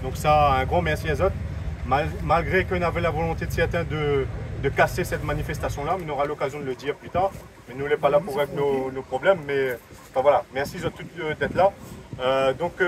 Donc ça, un grand merci à eux. Malgré qu'on avait la volonté de certains de casser cette manifestation-là, mais on aura l'occasion de le dire plus tard. Mais nous, on n'est pas là pour régler nos problèmes. Mais enfin, voilà, merci à toutes d'être là. Comme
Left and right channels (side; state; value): both; identical; correlation 1.00